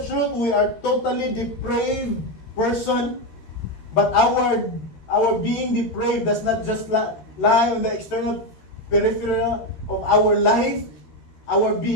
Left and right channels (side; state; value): right; late; 13 ms